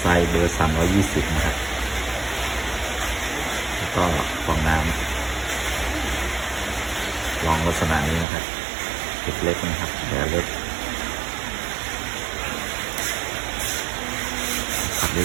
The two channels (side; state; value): left; drops out; at 8.2 s